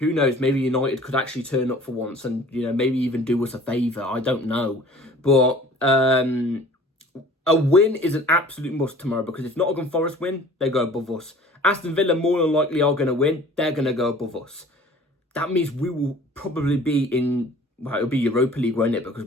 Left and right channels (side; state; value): both; normal; correlation 0.48